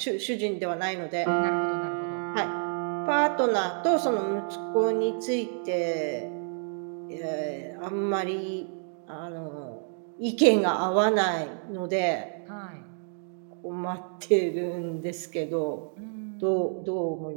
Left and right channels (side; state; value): left; silent; 59 dB below the other